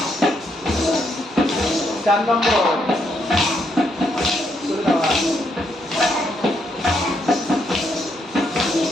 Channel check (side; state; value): both; normal; correlation 0.76